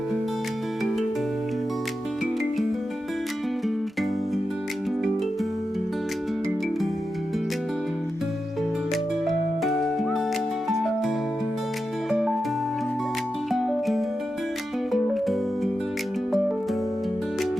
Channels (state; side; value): normal; both; correlation 0.90